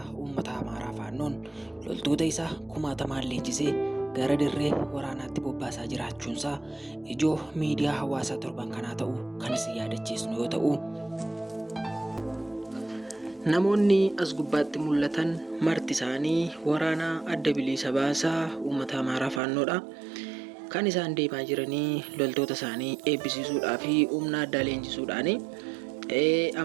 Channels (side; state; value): left; drops out; at 19.4 s